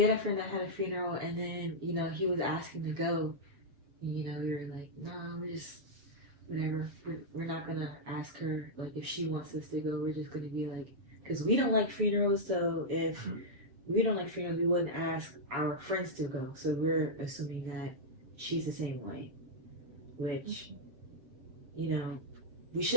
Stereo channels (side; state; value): left; late; 7.1 ms